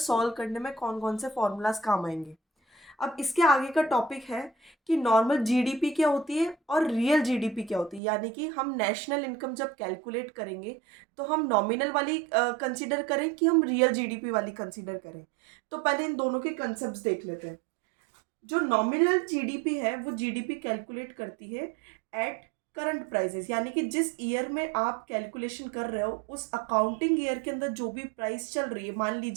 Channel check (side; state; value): left; drops out; at 8.0 s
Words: करने में कौन कौन से फॉर्मूलाज काम आएंगे। अब इसके आगे का टॉपिक है कि नॉर्मल जीडीपी क्या होती है और रियल जीडीपी क्या होती है, यानी कि हम नेशनल इनकम जब कैलकुलेट करेंगे तो हम नॉमिनल वाली कंसीडर करें कि हम रियल जीडीपी वाली कंसीडर करें। तो पहले इन दोनों के कंसेप्ट देख लेते हैं। जो नॉमिनल जीडीपी है वो जीडीपी कैलकुलेट करती है एट करंट प्राइसेस, यानी कि जिस ईयर में आप कैलकुलेशन कर रहे हो उस अकाउंटिंग ईयर के अंदर जो भी प्राइस चल रही है। मान